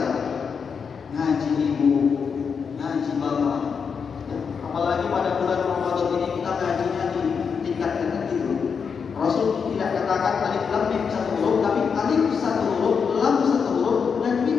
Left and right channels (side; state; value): right; quieter; 6.1 dB